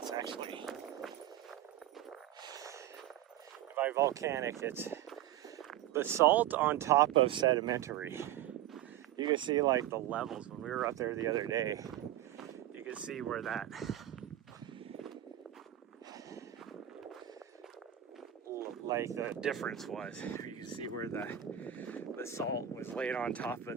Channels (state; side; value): quieter; left; 11.9 dB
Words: actually, by volcanic, it's basalt on top of sedimentary. You can see like the levels when we were up there the other day. You can see where that like the difference was. You can see where the salt was laid on top